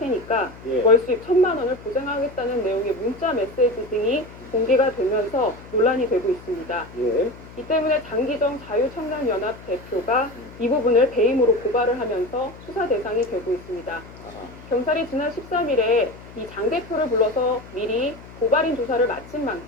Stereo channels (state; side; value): noise; left; hum, 18 dB below the sound